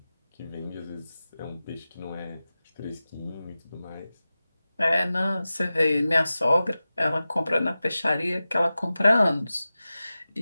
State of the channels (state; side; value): inverted; both; correlation -0.95